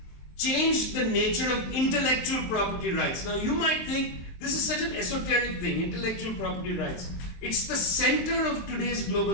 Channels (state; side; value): late; right; 23 ms